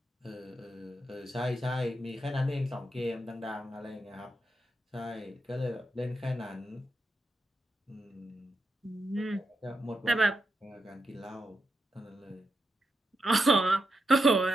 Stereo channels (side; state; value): both; normal; correlation 0.85